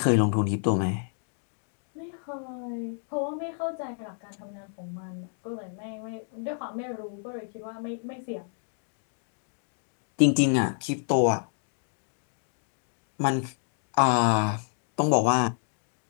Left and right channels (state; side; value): silent; right; 58 dB below the other